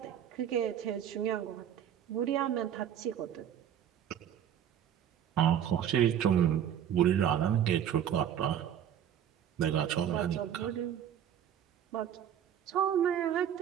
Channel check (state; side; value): quieter; left; 9.8 dB